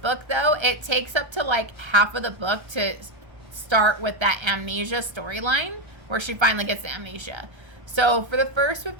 though, it takes up to like half of the book to start with that amnesia storyline where she finally gets the amnesia. So for the first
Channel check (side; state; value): left; late; 1.3 ms